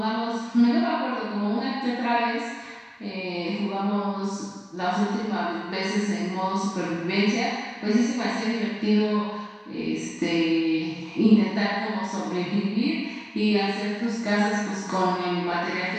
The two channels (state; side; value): identical; both; correlation 1.00